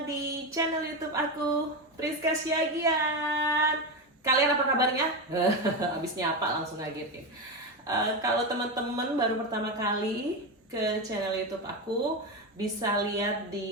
di channel YouTube aku, Priska Syagian. Kalian apa kabarnya? Abis nyapa langsung ngagetin. Kalau teman-teman baru pertama kali ke channel YouTube aku, bisa lihat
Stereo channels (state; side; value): normal; both; correlation 0.15